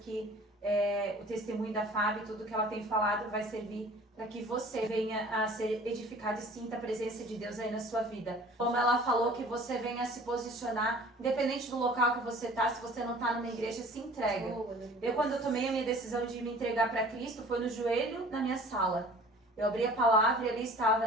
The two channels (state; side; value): normal; both; correlation 0.47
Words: o testemunho da Fábio, tudo que ela tem falado vai servir para que você venha a ser edificado e sinta a presença de Deus aí na sua vida. Como ela falou, que você venha a se posicionar, independente do local que você está, se você não está numa igreja, se entrega. Quando eu tomei a minha decisão de me entregar para Cristo, foi no joelho na minha sala. Eu abri a palavra e ali